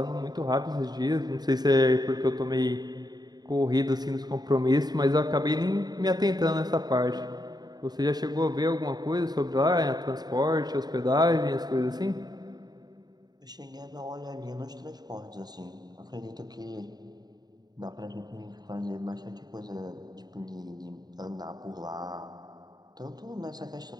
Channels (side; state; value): left; late; 0.20 ms